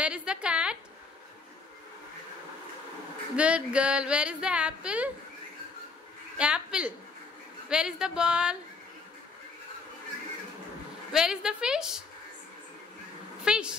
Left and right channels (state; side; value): quieter; right; 4.3 dB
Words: is the cat? Good girl. Where is the apple? Apple. Where is the ball? Where is the fish?